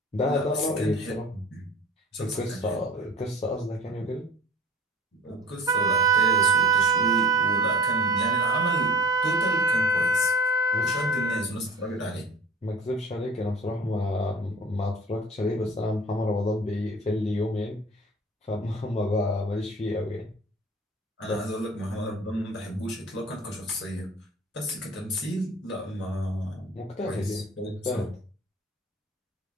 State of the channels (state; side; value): normal; both; correlation 0.42